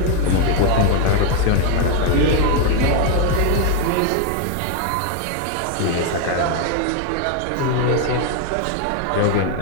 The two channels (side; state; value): both; different; correlation 0.01